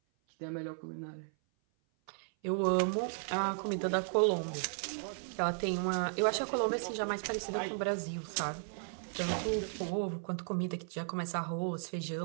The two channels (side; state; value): left; silent; 54 dB below the other